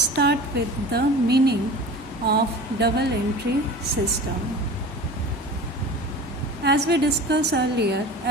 with the meaning of double entry system. As we discussed earlier,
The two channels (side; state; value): both; normal; correlation 0.37